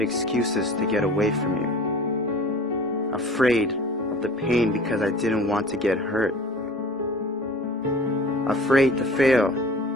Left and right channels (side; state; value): both; normal; correlation 0.43